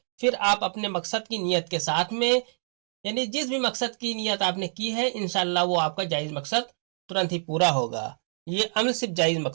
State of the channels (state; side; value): silent; left; digital silence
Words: फिर आप अपने मकसद की नियत के साथ में यानी जिस भी मकसद की नियत आपने की है इंशाल्लाह वो आपका जायज मकसद तुरंत ही पूरा होगा। ये अमल सिर्फ जायज